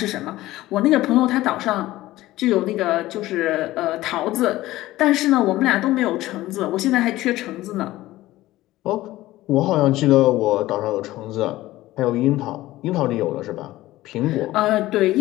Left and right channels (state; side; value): quieter; right; 16.6 dB